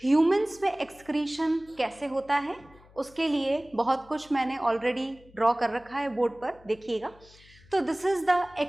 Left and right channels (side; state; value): left; noise; hum, 25 dB below the sound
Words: ह्यूमंस में एक्सक्रीशन कैसे होता है उसके लिए बहुत कुछ मैंने ऑलरेडी ड्रॉ कर रखा है बोर्ड पर, देखिएगा। तो this is the